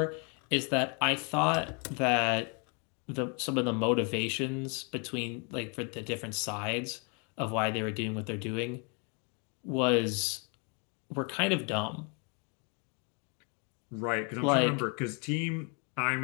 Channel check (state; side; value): quieter; right; 35.7 dB